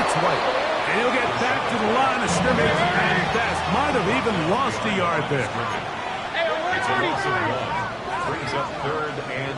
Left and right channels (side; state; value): both; identical; correlation 1.00